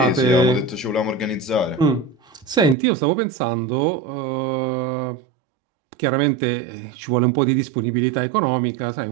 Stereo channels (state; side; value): drops out; left; at 2.8 s